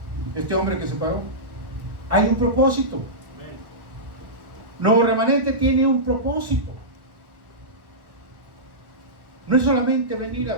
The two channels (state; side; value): late; left; 1.4 ms